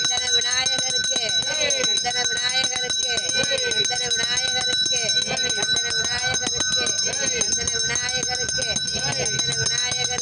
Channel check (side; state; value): both; identical; correlation 1.00